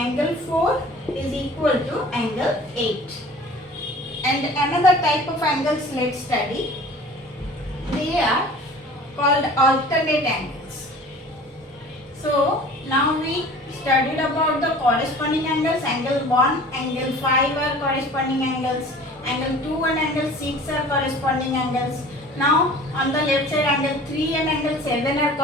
4 is equal to angle 8. And another type of angles let's study. They are called alternate angles. So now we studied about the corresponding angles. Angle 1, angle 5 are corresponding angles. Angle 2 and angle 6 are corresponding angles. Now on the left side, angle 3 and angle 7 are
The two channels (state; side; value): normal; both; correlation 0.44